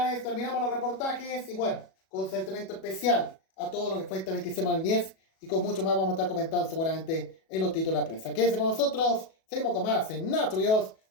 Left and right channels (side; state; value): right; late; 37 ms